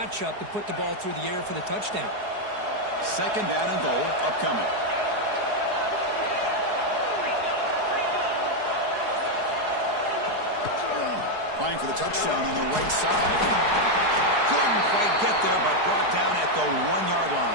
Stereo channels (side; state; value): left; late; 4.8 ms